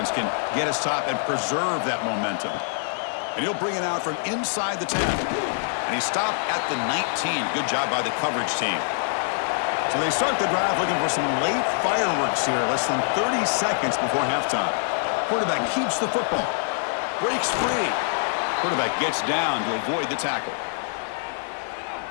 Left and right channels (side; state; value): right; silent; digital silence